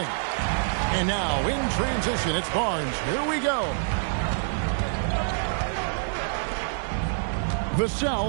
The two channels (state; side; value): silent; left; digital silence